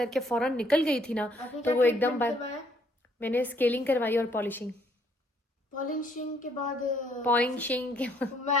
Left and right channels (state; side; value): normal; both; correlation 0.65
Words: फ़ौरन निकल गई थी ना, तो वो एकदम मैंने स्केलिंग करवाई और पॉलिशिंग पॉलिशिंग के बाद मैं